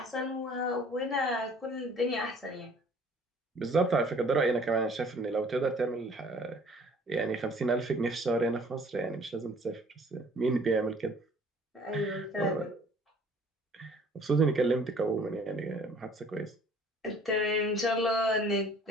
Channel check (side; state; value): both; normal; correlation 0.54